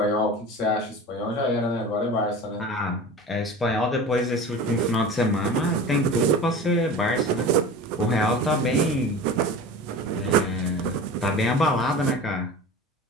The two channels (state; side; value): normal; both; correlation 0.35